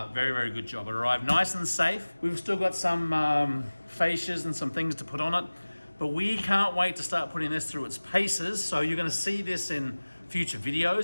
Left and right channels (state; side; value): inverted; both; correlation -1.00